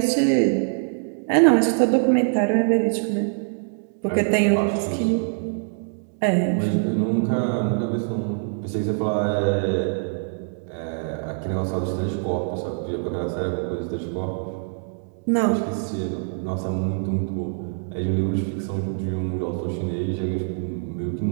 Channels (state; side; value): silent; left; digital silence